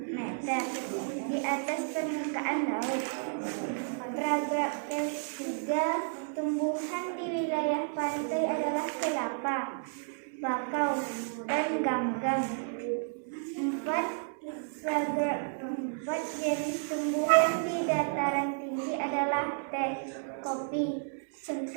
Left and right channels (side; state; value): left; silent; digital silence